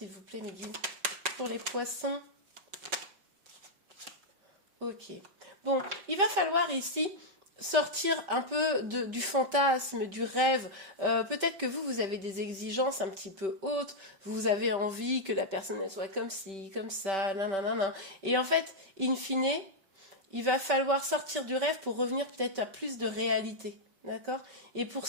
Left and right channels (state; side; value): late; left; 5.2 ms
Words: vous plaît, Mehdi? Pour les poissons. Ok. Bon, il va falloir ici sortir un peu du fantasme, du rêve. Peut-être que vous avez des exigences un petit peu hautes, vous avez envie que la personne elle soit comme ci, comme ça, nanana. Et en fait, in fine, il va falloir sortir du rêve pour revenir peut-être à plus de réalité. D'accord? Et pour